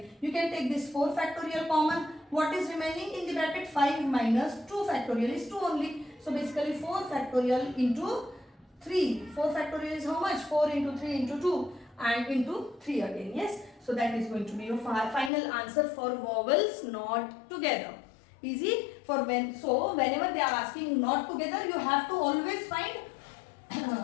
You can take this 4 factorial common. What is remaining in the bracket? 5 minus 2 factorial is 2 only. So basically 4 factorial into 3. 4 factorial is how much? 4 into 3 into 2 and into 3 again. Yes. So that is going to be your final answer for vowels not together. Easy. For whenever they are asking not together, you have to always find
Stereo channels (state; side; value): drops out; right; at 15.3 s